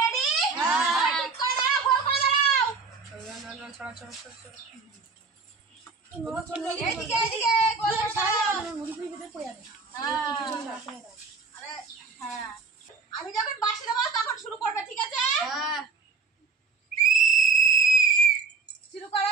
ঠিক করে দাঁড়াও, গোল করে দাঁড়াও। এদিকে এদিকে গোল করে দাঁড়াও। হ্যাঁ, আমি যখন বাঁশি দেবো তখন শুরু করবে, ঠিক আছে? শুরু করো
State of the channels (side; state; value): left; quieter; 4.7 dB